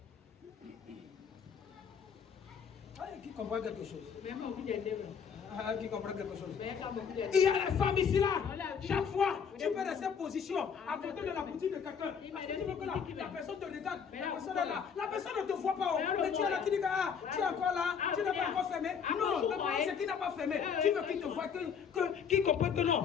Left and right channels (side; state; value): right; quieter; 6.9 dB